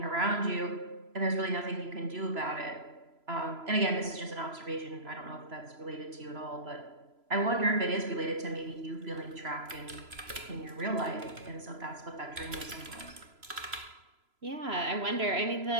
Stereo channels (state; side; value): late; left; 3.0 ms